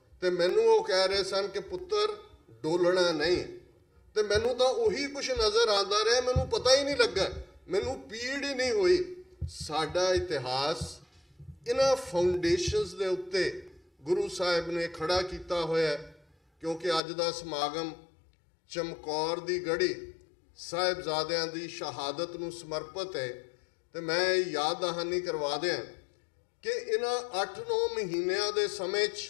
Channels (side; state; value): right; drops out; at 17.0 s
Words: ਤੇ ਮੈਨੂੰ ਉਹ ਕਹਿ ਰਹੇ ਸਨ ਕਿ ਪੁੱਤਰ ਡੋਲਣਾ ਨਹੀਂ। ਤੇ ਮੈਨੂੰ ਤਾਂ ਉਹੀ ਕੁਛ ਨਜ਼ਰ ਆਉਂਦਾ ਰਿਹਾ, ਮੈਨੂੰ ਪਤਾ ਹੀ ਨਹੀਂ ਲੱਗਾ, ਮੈਨੂੰ ਪੀੜ ਹੀ ਨਹੀਂ ਹੋਈ। ਸਾਡਾ ਇਤਿਹਾਸ ਇਹਨਾਂ ਫਾਊਂਡੇਸ਼ਨਸ ਦੇ ਉੱਤੇ ਗੁਰੂ ਸਾਹਿਬ ਨੇ ਖੜਾ ਕੀਤਾ ਹੋਇਆ, ਕਿਉਂਕਿ ਅੱਜ ਦਾ ਸਮਾਗਮ ਚਮਕੌਰ ਦੀ ਗੜੀ ਸਾਹਿਬਜ਼ਾਦਿਆਂ ਦੀ ਸ਼ਹਾਦਤ ਨੂੰ ਸਮਰਪਿਤ ਹੈ। ਤੇ ਮੈਂ ਯਾਦ ਦਹਾਨੀ ਕਰਵਾ ਦਿਆਂ ਕਿ ਇਹਨਾਂ 8-9 ਮਹੀਨਿਆਂ ਦੇ ਸਮੇਂ 'ਚ